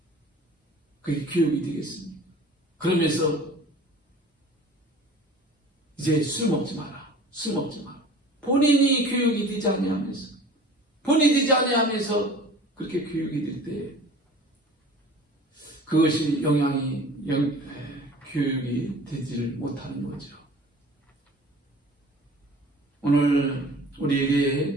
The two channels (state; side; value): normal; both; correlation 0.44